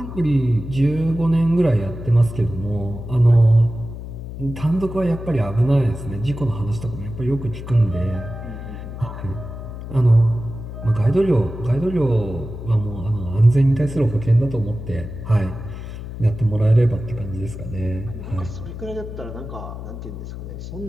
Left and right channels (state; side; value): noise; left; hum, 10 dB below the sound